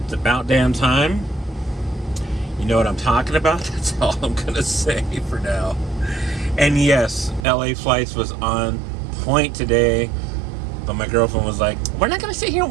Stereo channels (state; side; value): drops out; left; at 7.5 s